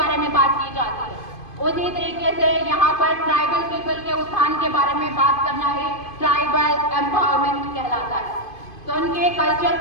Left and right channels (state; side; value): late; right; 2.5 ms